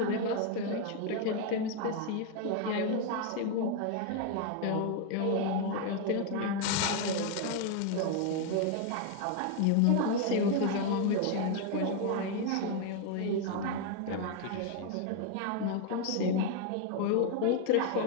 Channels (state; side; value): different; both; correlation 0.01